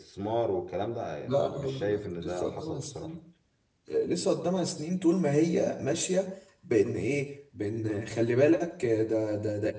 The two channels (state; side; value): identical; both; correlation 1.00